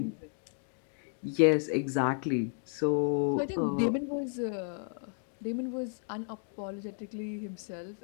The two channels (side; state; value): right; silent; 56 dB below the other